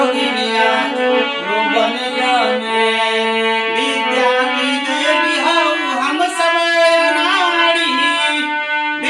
जो बनिया में विद्या की देवी हो हम सब नारी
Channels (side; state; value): both; identical; correlation 1.00